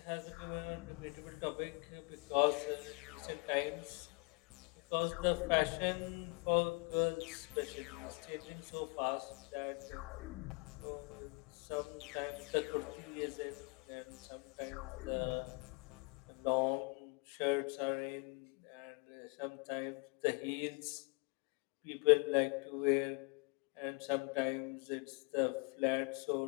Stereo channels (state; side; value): quieter; right; 32.0 dB